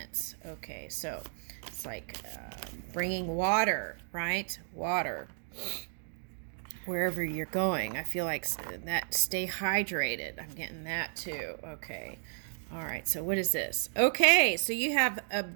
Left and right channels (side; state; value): left; silent; digital silence